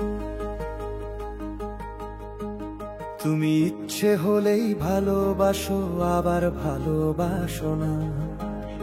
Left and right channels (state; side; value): identical; both; correlation 1.00